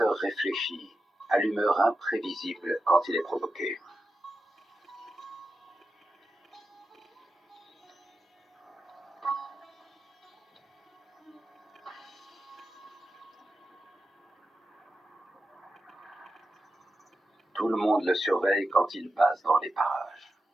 réfléchi, à l'humeur imprévisible quand il est provoqué. Tout le monde le surveille quand il passe dans les parages.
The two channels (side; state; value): both; normal; correlation 0.90